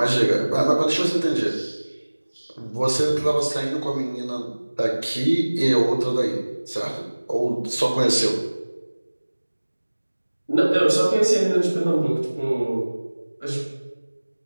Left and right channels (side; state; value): both; inverted; correlation -1.00